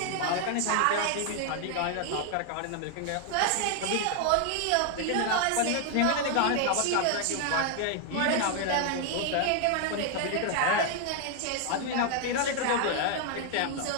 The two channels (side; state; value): both; different; correlation 0.00